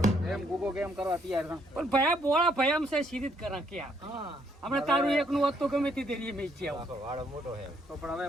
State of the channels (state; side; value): normal; both; correlation 0.70